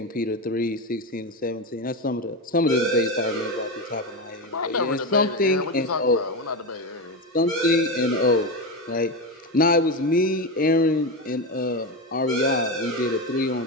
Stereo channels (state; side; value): normal; both; correlation 0.16